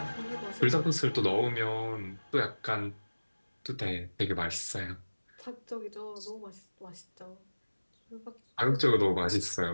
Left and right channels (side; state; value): both; inverted; correlation -1.00